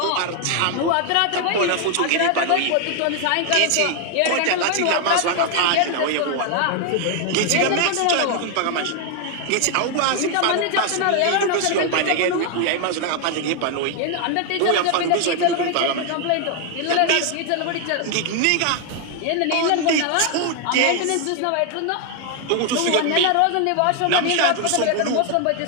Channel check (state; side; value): different; both; correlation 0.00